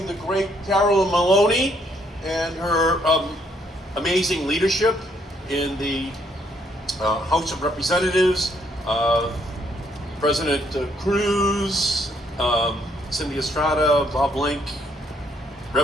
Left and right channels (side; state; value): both; normal; correlation 0.70